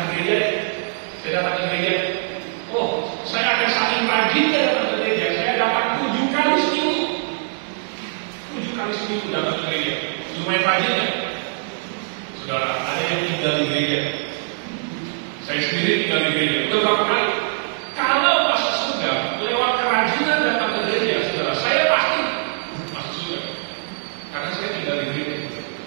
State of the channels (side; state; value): left; silent; digital silence